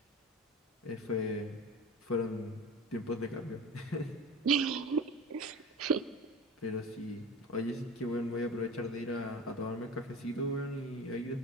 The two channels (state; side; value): normal; both; correlation 0.34